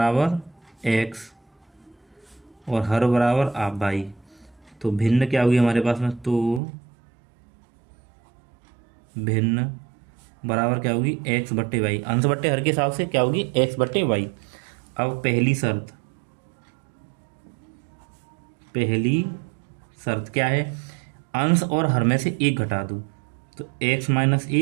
x और हर बराबर आप y, तो भिन्न क्या होगी हमारे पास में, तो भिन्न बराबर क्या होगी, x बट्टे वाई, अंश बट्टे हर के हिसाब से क्या होगी, x बट्टे वाई। अब पहली शर्त क्या है, अंश और हर में से 1 घटा दो, तो x -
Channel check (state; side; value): drops out; left; at 6.6 s